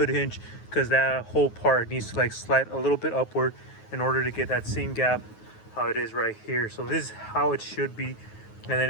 hinge, because that whole part needs to like slide a little bit upward in order to get that same gap how it is right here. So this is how it should be. And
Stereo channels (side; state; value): right; late; 9.4 ms